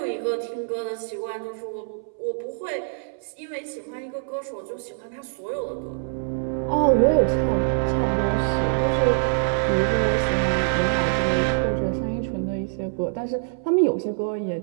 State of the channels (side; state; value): left; silent; 62 dB below the other